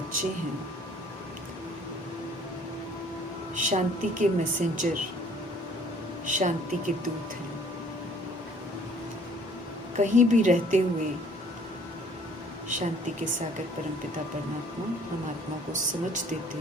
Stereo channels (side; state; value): both; normal; correlation 0.57